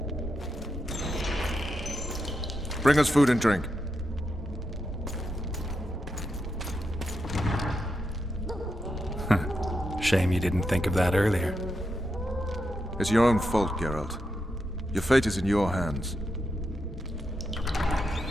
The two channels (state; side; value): normal; both; correlation 0.85